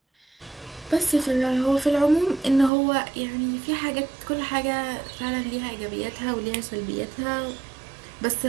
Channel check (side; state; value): left; drops out; at 2.7 s